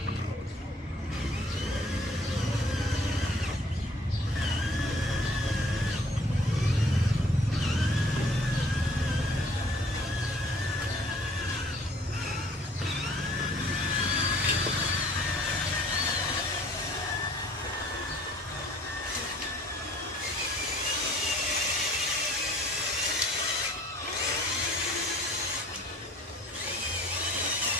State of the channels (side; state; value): both; normal; correlation 0.55